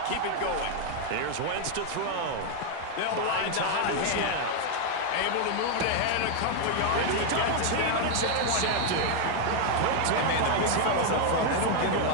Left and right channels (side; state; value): both; different; correlation 0.00